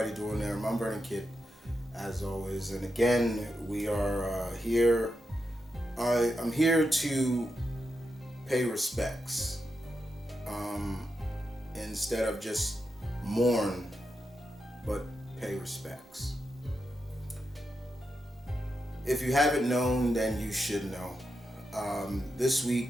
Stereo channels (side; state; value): both; normal; correlation 0.86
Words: doing there? I'm M.V.K, as always, and again we are here. I'm here to pay respects instead of just mourn, but pay respects. If you haven't known, then you should know. This